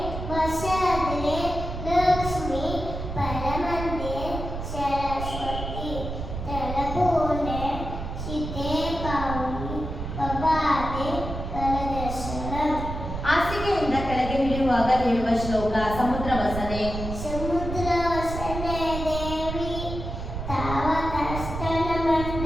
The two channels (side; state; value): right; noise; rumble, 6 dB below the sound